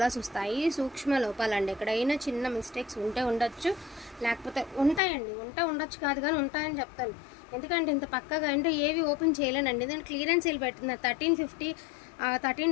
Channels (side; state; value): right; drops out; at 5.0 s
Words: వస్తాయి. సూక్ష్మ లోపాలండి. ఎక్కడైనా చిన్న మిస్టేక్స్ ఉంటే ఉండొచ్చు, లేకపోతే ఉంటాయండి. ఉండొచ్చు కాదు కానీ ఉంటాయని చెప్తాను. ఎందుకంటే ఇంత పక్కగా అంటే ఏవి ఓపెన్ చేయలేనండి. దాని క్లియరెన్స్ సేల్ పెట్టిన